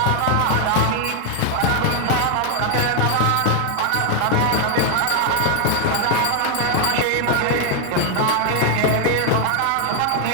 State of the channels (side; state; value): both; different; correlation 0.00